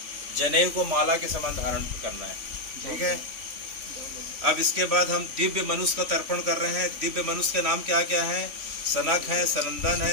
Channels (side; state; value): left; late; 3.5 ms